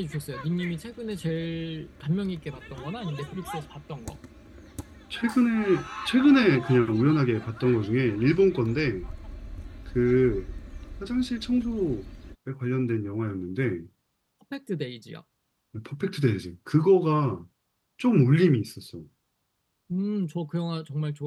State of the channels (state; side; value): identical; both; correlation 1.00